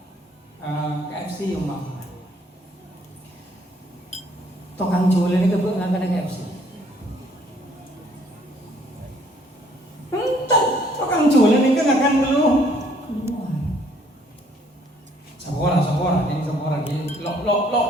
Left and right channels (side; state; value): both; normal; correlation 0.63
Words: KFC yang mbak tukang jual ini kebuk nggak ada KFC. Entah tukang jual ini kan akan keluar. Sekolah ini